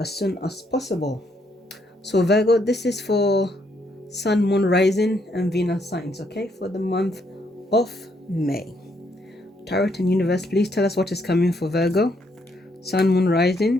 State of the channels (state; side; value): normal; both; correlation 0.73